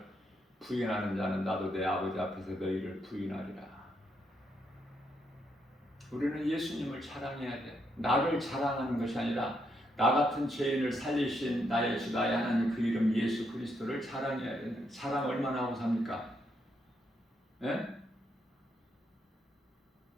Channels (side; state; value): both; normal; correlation 0.78